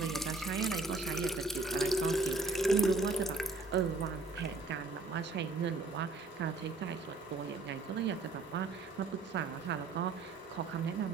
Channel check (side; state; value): left; quieter; 3.5 dB